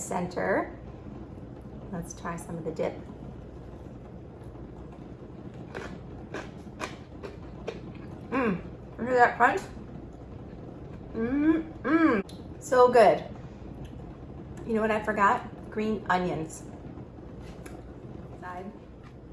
Let's try some of the dip. Hear that crunch? So good. You know what I forgot? Green onions.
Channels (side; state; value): both; identical; correlation 1.00